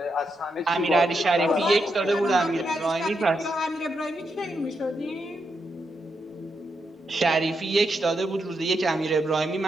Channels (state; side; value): normal; both; correlation 0.83